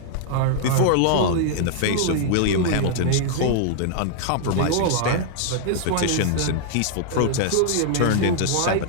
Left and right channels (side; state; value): both; different; correlation -0.01